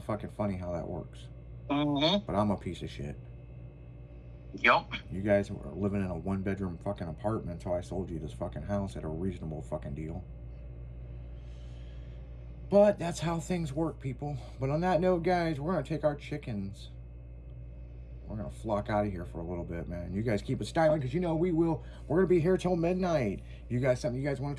fucking funny how that works. But I'm a piece of shit. Yup. You guys were living in a one-bedroom fucking apartment, so I sold you this fucking house at a reasonable fucking deal. But that's how things work, people. But on that note, guys, we're going to take our chickens. We're going to flock out of here for a little bit, man. You guys keep it styling, because you know we will. We're going to be here till midnight. You guys, something you guys want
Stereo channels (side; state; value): both; identical; correlation 1.00